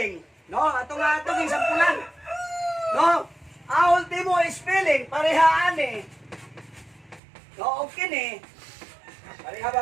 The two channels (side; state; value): left; drops out; at 7.2 s